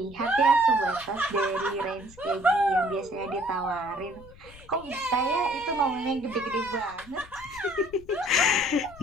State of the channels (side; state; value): left; noise; rumble, 21 dB below the sound